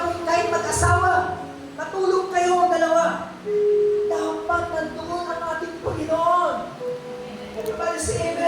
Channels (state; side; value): identical; both; correlation 1.00